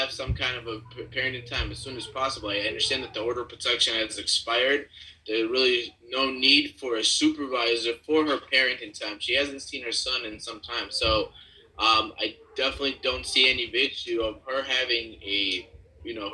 some kind of a parenting time as soon as possible. I understand that the order of protection has expired. There's really no need for a supervisor for her parenting time. She hasn't seen her son in some time. So I definitely don't see any issue of her having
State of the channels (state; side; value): identical; both; correlation 1.00